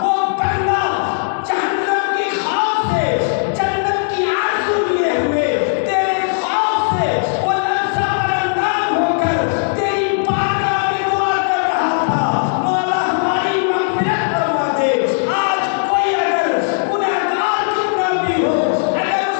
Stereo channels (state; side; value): silent; right; digital silence